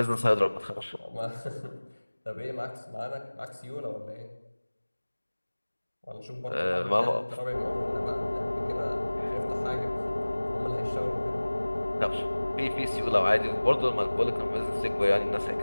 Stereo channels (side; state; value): both; inverted; correlation -1.00